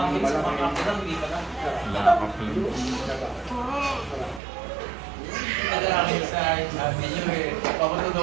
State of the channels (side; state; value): left; drops out; at 4.4 s